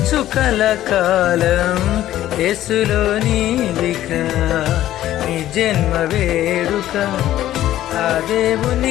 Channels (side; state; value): right; quieter; 13.3 dB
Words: కలకాలం యేసులో నీవిక. నీ జన్మ వేడుక ఆ